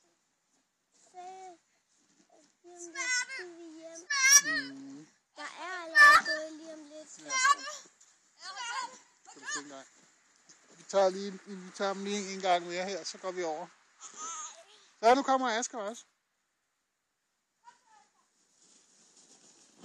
Der er allerede gået lige om lidt. Kan du tænke dig? Vi tager dem lige en gang mere her, så går vi over. Så nu kommer Asger også.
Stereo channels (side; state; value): both; identical; correlation 1.00